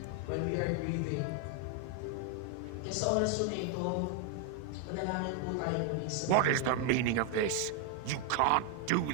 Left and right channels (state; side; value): different; both; correlation 0.01